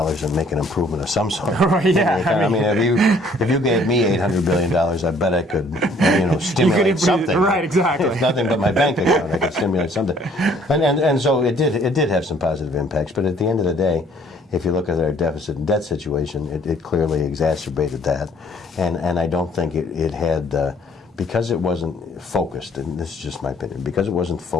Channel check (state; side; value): normal; both; correlation 0.60